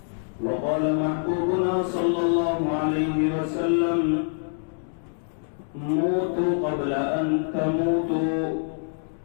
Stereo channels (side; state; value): right; silent; digital silence